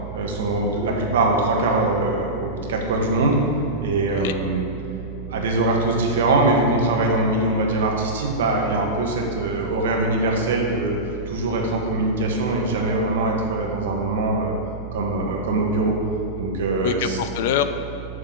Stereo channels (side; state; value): right; noise; hum, 11 dB below the sound